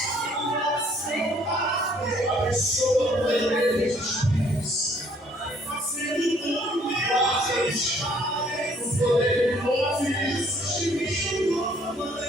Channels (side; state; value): both; normal; correlation 0.62